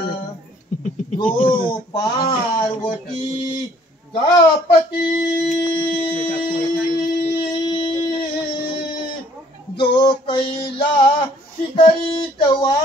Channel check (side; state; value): both; normal; correlation 0.60